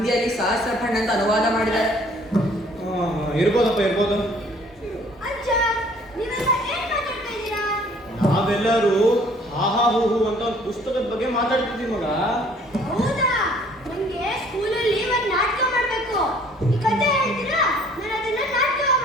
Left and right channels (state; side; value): normal; both; correlation 0.57